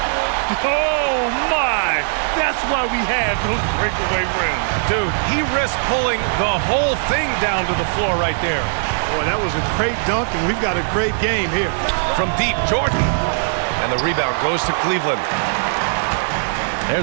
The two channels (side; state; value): left; silent; digital silence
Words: Oh, my. That's why we have those breakaway rims. Dude, he risked pulling the whole thing down to the floor right there. Boy, that was a great dunk, and we've got a great game here. From deep, Jordan. And the rebound goes to Cleveland.